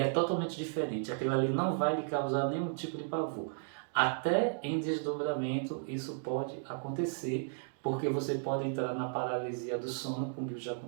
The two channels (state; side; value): silent; left; digital silence